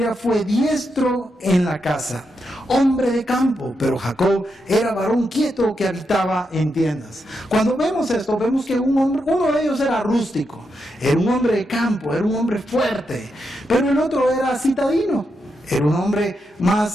fue diestro en la casa, hombre de campo, pero Jacob era varón quieto que habitaba en tiendas. Cuando vemos esto, vemos que uno de ellos era rústico, era un hombre de campo, era un hombre fuerte, pero el otro era citadino, era un hombre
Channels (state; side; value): normal; both; correlation 0.84